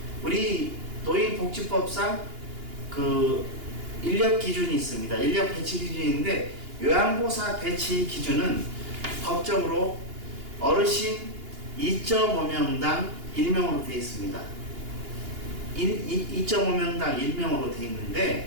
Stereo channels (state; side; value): late; left; 2.8 ms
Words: 우리 노인복지법상 그 인력 기준이 있습니다. 인력 배치 기준인데 요양보호사 배치 기준은 법적으로 어르신 2.5명당 1명으로 되어 있습니다. 2.5명당 1명으로 되어